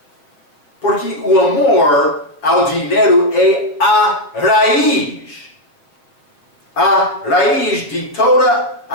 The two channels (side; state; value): right; late; 6.9 ms